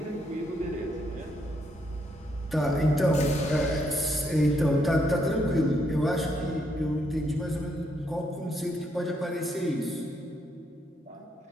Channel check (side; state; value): both; normal; correlation 0.75